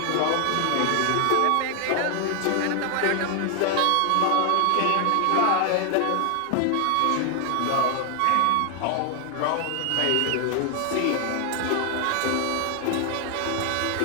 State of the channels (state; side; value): different; both; correlation 0.00